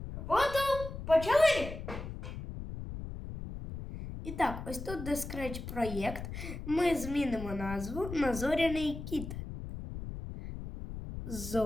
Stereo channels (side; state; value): left; noise; rumble, 8 dB below the sound